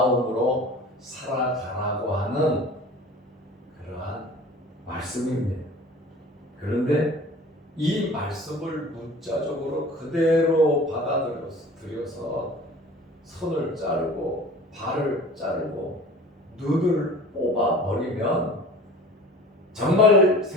살아가라고 하는 그러한 말씀입니다. 그런데 이 말씀을 문자적으로 그대로 받아들여서 손을 자르고 발을 자르고 눈을 뽑아버리면 정말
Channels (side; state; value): both; normal; correlation 0.42